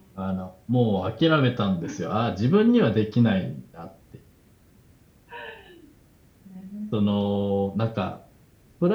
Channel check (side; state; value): both; identical; correlation 1.00